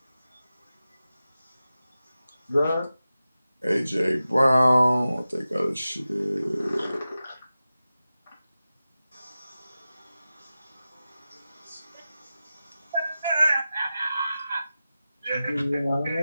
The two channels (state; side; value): inverted; both; correlation -0.94